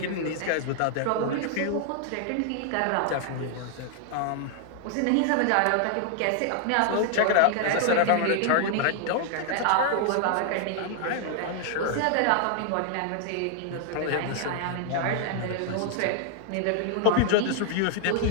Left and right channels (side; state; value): both; different; correlation 0.00